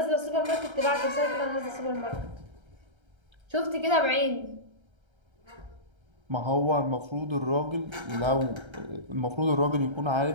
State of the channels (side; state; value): left; late; 1.3 ms